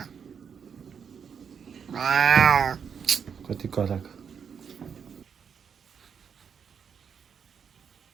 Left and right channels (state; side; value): quieter; left; 7.0 dB